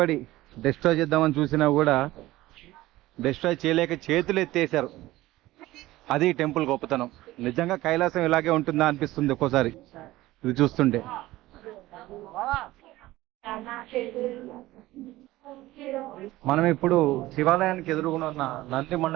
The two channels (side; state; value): left; quieter; 17.4 dB